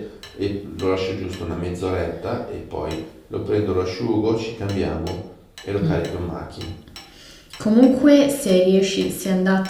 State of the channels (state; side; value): identical; both; correlation 1.00